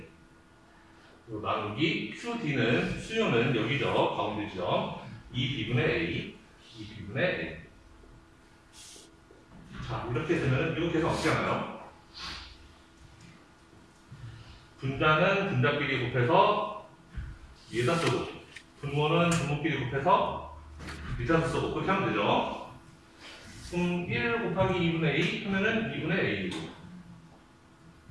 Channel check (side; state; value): both; identical; correlation 1.00